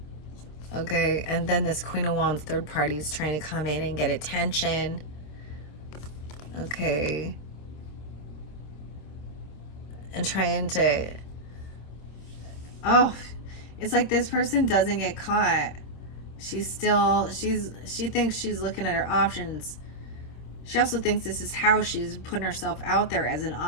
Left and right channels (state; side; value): late; right; 26 ms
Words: Okay, and then this Queen of Wands third party is trying to come in and get attention. Okay. And trying to... Oh, it's like this person doesn't get caught. She thinks she's looking at her options. She also thinks this is how she's putting herself out there as an